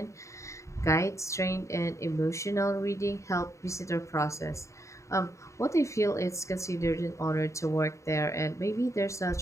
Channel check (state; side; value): late; right; 0.14 ms